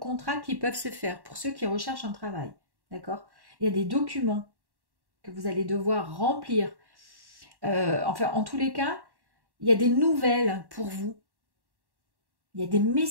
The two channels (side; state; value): left; late; 1.1 ms